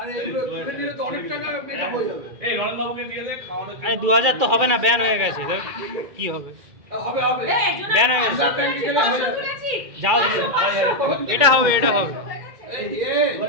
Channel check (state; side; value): late; left; 2.3 ms